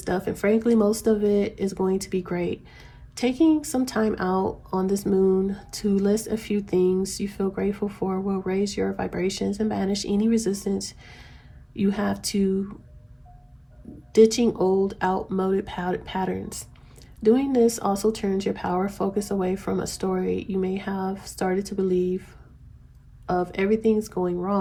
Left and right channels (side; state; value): both; identical; correlation 1.00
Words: And frankly, most of it is going to be great. Taking some time out on this moon to list a few things you feel grateful for will raise your vibrations and banish any resistance you have to ditching old, outmoded patterns. Doing this also turns your power focus away from a story you may have started to believe of everything's going